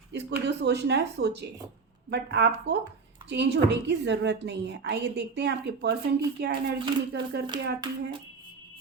जिसको जो सोचना है सोचे, बट आपको चेंज होने की ज़रूरत नहीं है। आइए देखते हैं आपके पर्सन की क्या एनर्जी निकल करके आती है।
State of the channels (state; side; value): quieter; left; 4.8 dB